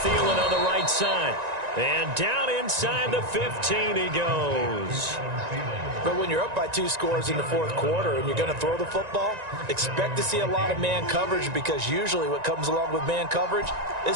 on the right side. And down inside the 15 he goes. But when you're up by 2 scores in the 4th quarter and you're going to throw the football, expect to see a lot of man coverage, because usually what comes along with man coverage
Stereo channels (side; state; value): left; late; 1.9 ms